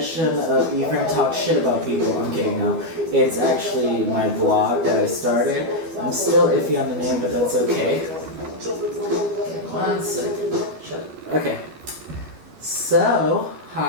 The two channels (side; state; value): left; late; 12 ms